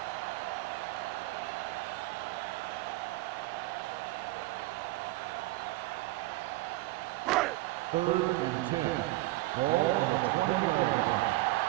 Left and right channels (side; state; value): left; quieter; 19.4 dB